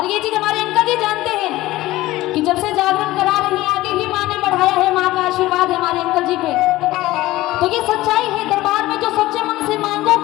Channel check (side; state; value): right; quieter; 17.4 dB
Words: ये चीज हमारे अंकल जी जानते हैं कि जब से जागरण करा रही है आगे भी माँ ने बढ़ाया है। माँ का आशीर्वाद है हमारे अंकल जी पे। तो ये सच्चाई है, दरबार में जो सच्चे मन से